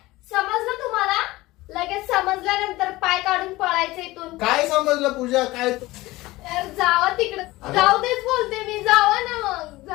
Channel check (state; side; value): quieter; right; 19.1 dB